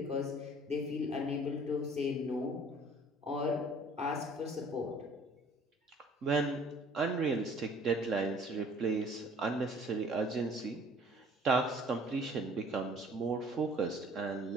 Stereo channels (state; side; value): normal; both; correlation 0.53